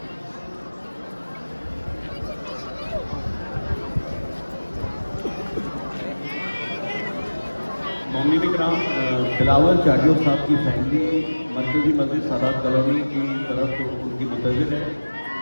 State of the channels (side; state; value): both; inverted; correlation -1.00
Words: मोमिन इकराम, बिलावल चाडियो साहब की फैमिली मरकजी मस्जिद सादात कॉलोनी की तरफ उनकी मुंतज़िर है।